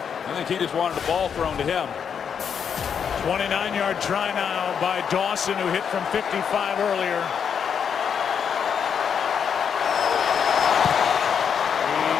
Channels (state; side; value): quieter; right; 7.3 dB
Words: I think he just wanted the ball thrown to him. 29-yard try now by Dawson, who hit from 55 earlier.